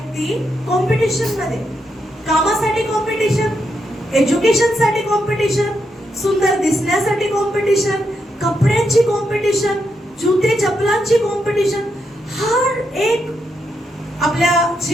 कॉम्पिटिशन मध्ये, कामासाठी कॉम्पिटिशन, एज्युकेशन साठी कॉम्पिटिशन, सुंदर दिसण्यासाठी कॉम्पिटिशन, कपड्यांची कॉम्पिटिशन, जुते चपलांची कॉम्पिटिशन, हर एक आपल्या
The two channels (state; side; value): normal; both; correlation 0.82